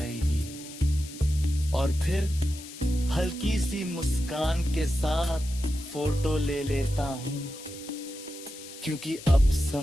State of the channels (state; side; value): noise; left; hiss, 15 dB below the sound